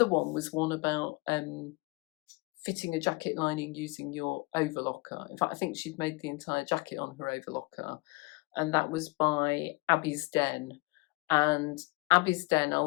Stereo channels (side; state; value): right; quieter; 25.5 dB